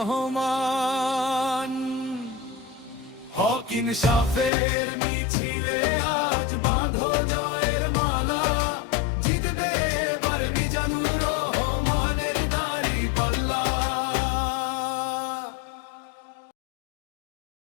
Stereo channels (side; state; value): right; drops out; at 4.5 s